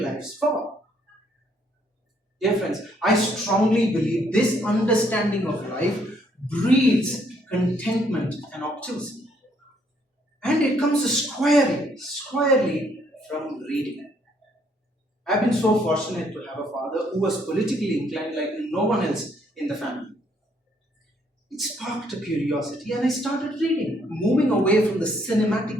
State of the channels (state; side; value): normal; both; correlation 0.68